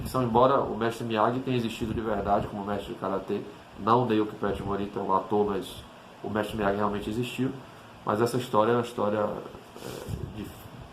embora o mestre Miyagi tenha existido de verdade como mestre de karatê, não Naoki Pet Morita, o ator, mas o mestre Miyagi realmente existiu. Mas essa história é uma história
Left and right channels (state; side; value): identical; both; correlation 1.00